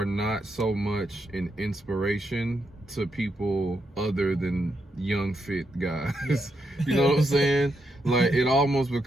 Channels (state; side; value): normal; both; correlation 0.81